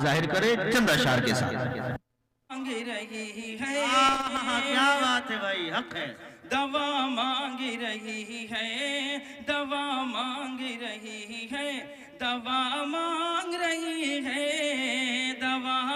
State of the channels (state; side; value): identical; both; correlation 1.00